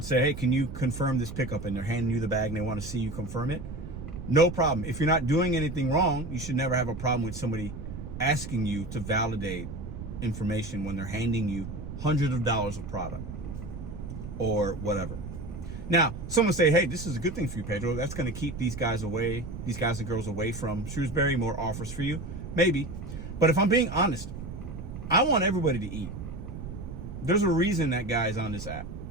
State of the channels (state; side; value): noise; right; rumble, 9 dB below the sound